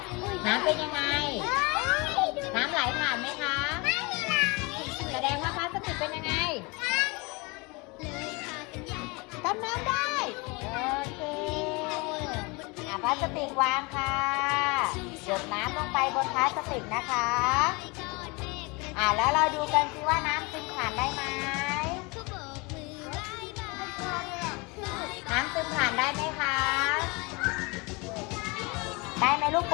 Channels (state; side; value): quieter; right; 27.4 dB